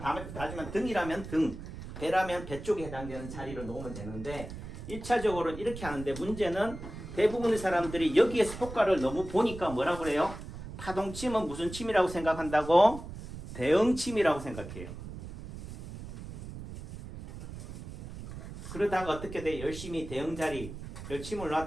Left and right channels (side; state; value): right; noise; rumble, 11 dB below the sound